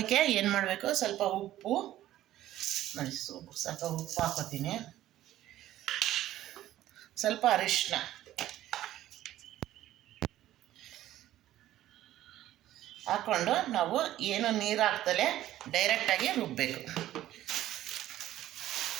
ಏನು ಮಾಡಬೇಕು, ಸ್ವಲ್ಪ ಉಪ್ಪು ನೋಡಿ, ಸ್ವಲ್ಪ ಉಪ್ಪು ಹಾಕೋತೀನಿ, ಸ್ವಲ್ಪ ಅರಿಶಿನ ಹಾಕ್ಕೊಂಡು ನಾವು ಏನು ನೀರು ಹಾಕ್ದಲೇ ಡೈರೆಕ್ಟಾಗಿ ರುಬ್ಬಬೇಕು.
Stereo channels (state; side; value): quieter; left; 13.7 dB